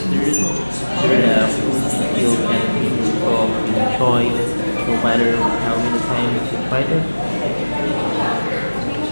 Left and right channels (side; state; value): both; inverted; correlation -1.00